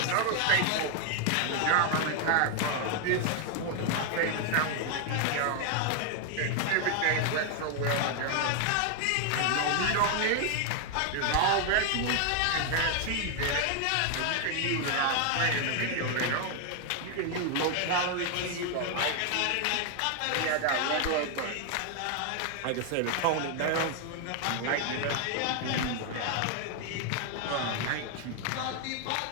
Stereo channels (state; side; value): different; both; correlation 0.00